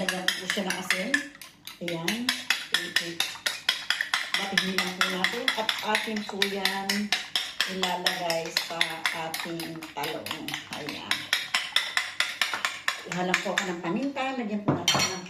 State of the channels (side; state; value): both; identical; correlation 1.00